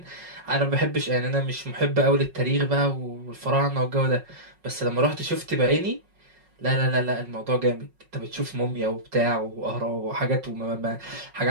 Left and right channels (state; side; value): late; left; 5.4 ms